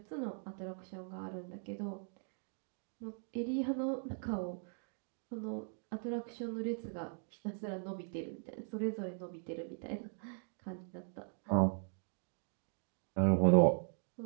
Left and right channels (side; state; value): left; silent; 51 dB below the other